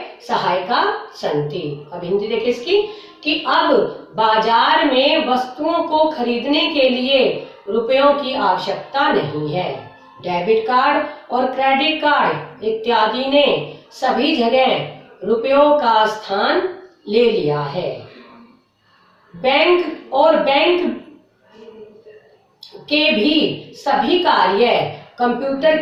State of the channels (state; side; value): identical; both; correlation 1.00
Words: सहायका सन्ति। अब हिंदी देखिए इसकी कि अब बाजार में वस्तुओं को खरीदने के लिए रुपयों की आवश्यकता नहीं है। डेबिट कार्ड और क्रेडिट कार्ड इत्यादि ने सभी जगह रुपयों का स्थान ले लिया है। बैंक और बैंक के भी सभी कार्य कंप्यूटर